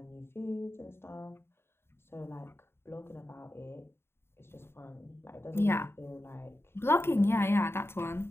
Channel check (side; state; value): right; late; 0.12 ms